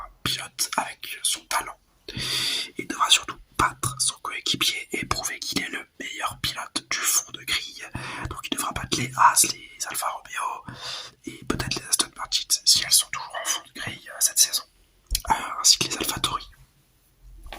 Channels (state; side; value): identical; both; correlation 1.00